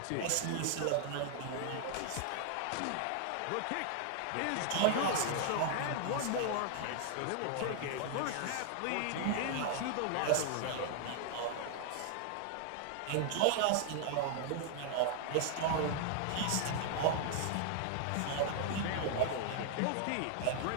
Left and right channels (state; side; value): different; both; correlation 0.00